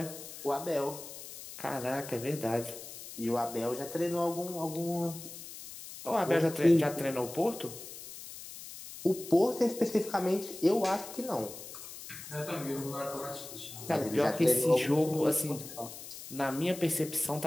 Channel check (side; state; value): left; noise; hiss, 13 dB below the sound